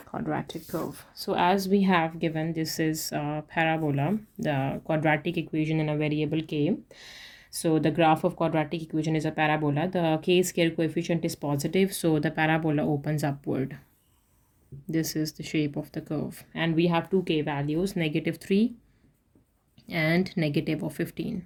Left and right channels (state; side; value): identical; both; correlation 1.00